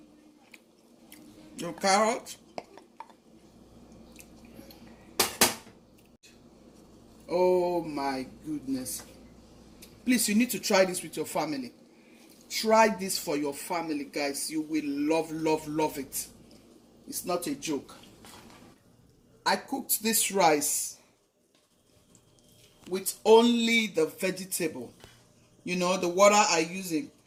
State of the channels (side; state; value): both; identical; correlation 1.00